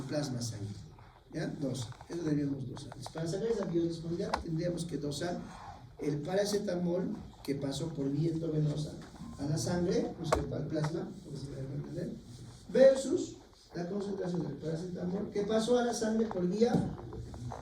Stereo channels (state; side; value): identical; both; correlation 1.00